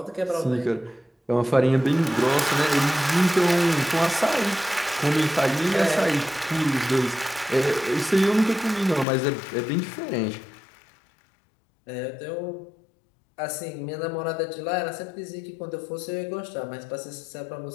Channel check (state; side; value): drops out; right; at 9.1 s